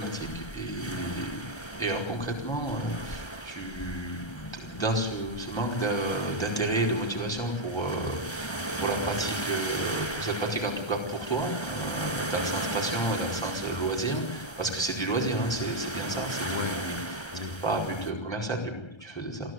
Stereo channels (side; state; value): right; late; 1.3 ms